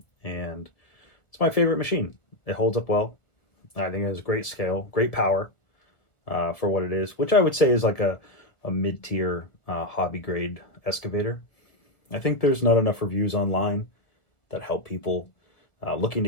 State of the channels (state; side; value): late; right; 1.7 ms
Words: and it's my favorite machine. It holds up well. I think it has great scale, great power for what it is, which I would say is like a mid-tier hobby grade excavator. I think there's not enough reviews online that help people looking